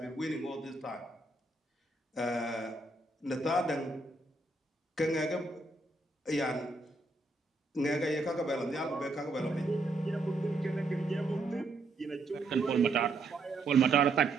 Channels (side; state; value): left; quieter; 3.2 dB